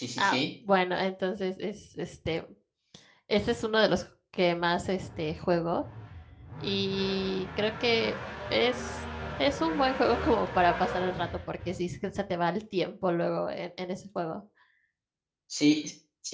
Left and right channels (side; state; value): both; identical; correlation 1.00